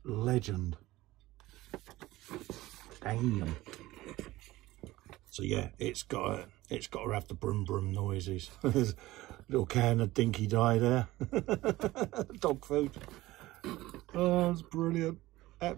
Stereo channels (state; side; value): quieter; left; 17.7 dB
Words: legend. Damn. So yeah, it's got to have the brum brum noises. There's a little can of dinky dye there. Dog food. Oh, it's brilliant.